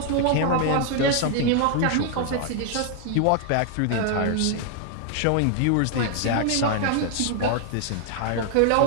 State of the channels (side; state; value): both; different; correlation 0.00